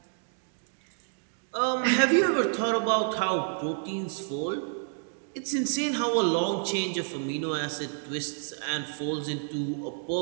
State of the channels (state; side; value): silent; left; digital silence